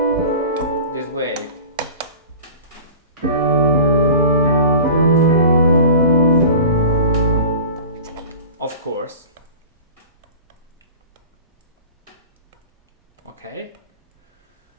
this way. Of course. Okay.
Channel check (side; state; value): both; inverted; correlation -0.37